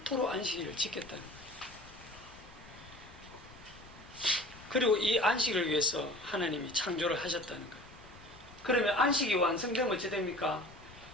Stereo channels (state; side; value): noise; left; rumble, 20 dB below the sound